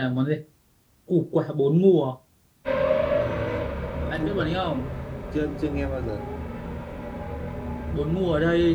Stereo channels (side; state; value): both; identical; correlation 1.00